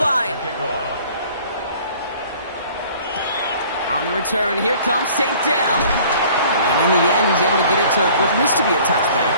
On the return, here comes St. Dell. And in the end, he's able to get it to what used to be a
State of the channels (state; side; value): inverted; both; correlation -0.51